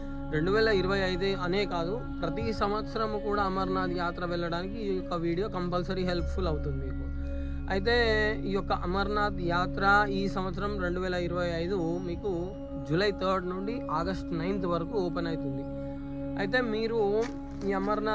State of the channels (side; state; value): both; identical; correlation 1.00